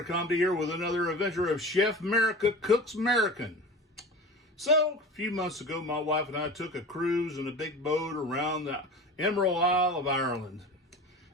Comedy here with another adventure of Chef Merica Cooks American. So, a few months ago, my wife and I took a cruise in a big boat around the Emerald Isle of Ireland.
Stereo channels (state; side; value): normal; both; correlation 0.34